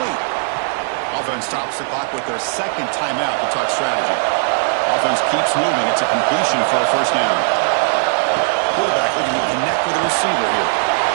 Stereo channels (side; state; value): left; silent; 56 dB below the other